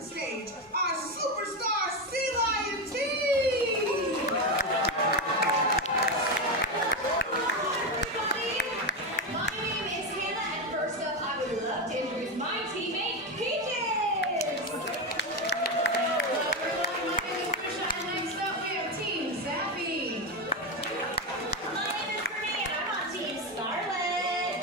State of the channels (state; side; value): normal; both; correlation 0.12